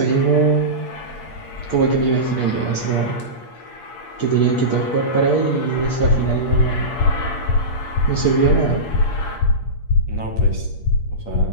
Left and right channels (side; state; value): right; late; 8.6 ms